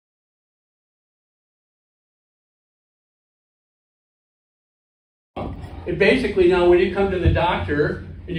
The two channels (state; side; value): identical; both; correlation 1.00